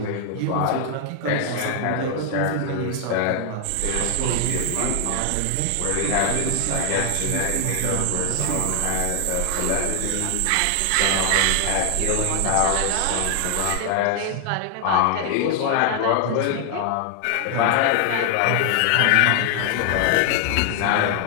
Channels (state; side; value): different; both; correlation 0.00